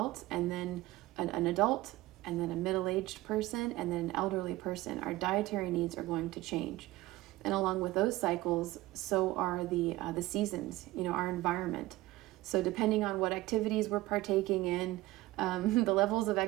and then an adult, and then a middle-aged person, and then an elderly person. Our dietary needs are going to change. And along with those cycles, so are the seasons, our environment. So depending on what activities we're partaking in, the levels of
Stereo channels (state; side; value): quieter; left; 18.1 dB